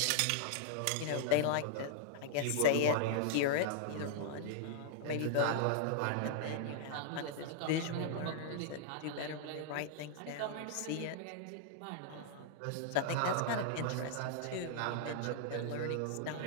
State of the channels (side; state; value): both; different; correlation -0.01